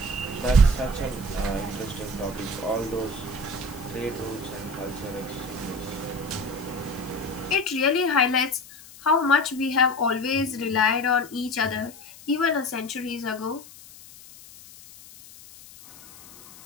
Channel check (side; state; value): left; noise; hiss, 19 dB below the sound